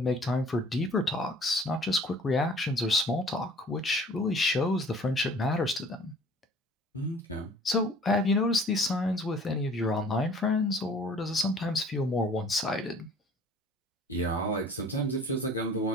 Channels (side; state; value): both; normal; correlation 0.51